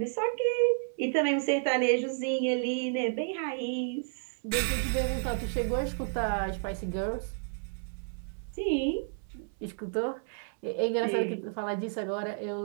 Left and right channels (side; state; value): left; silent; 57 dB below the other